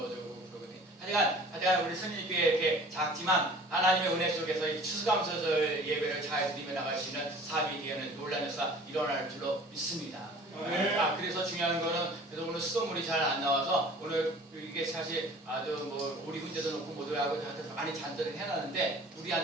하여간 우리 승리교회 이렇게 작지만 하나님의 은혜 속에서 이 추수감사절 예배를 잘 드리며 나갈 수 있는 삶이 되는 놀라운 역사 일어날 줄로 믿습니다. 그래서 중요한 거는 그래서 오늘 수돗물이 잘 안 나와서 오늘 이게 사실 우리 훈제도 놓고 모두 하고 많이 잔들을 해놨는데 물이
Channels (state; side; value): normal; both; correlation 0.46